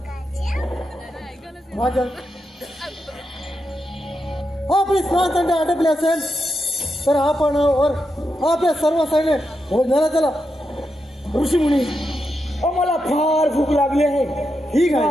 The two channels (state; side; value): normal; both; correlation 0.86